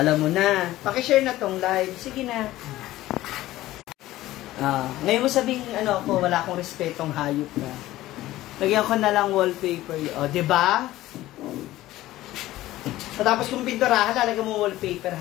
mo na. Pakishare na tong live. Sige na. Ngayon mo sabihin, ano ako, wala akong respetong hayop na. Lagyan ko na lang wallpaper. O, diba? Tapos kung pinturahan, lalagyan mo wallpaper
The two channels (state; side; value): quieter; right; 15.9 dB